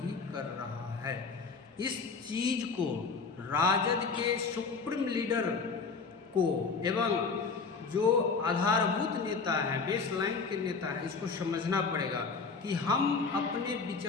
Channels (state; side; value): quieter; right; 4.8 dB